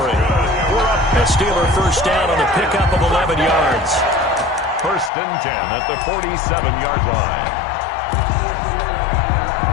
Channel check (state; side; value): drops out; right; at 5.1 s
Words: We're up a Steeler 1st down on the pickup of 11 yards. 1st and 10 at the 47-yard line.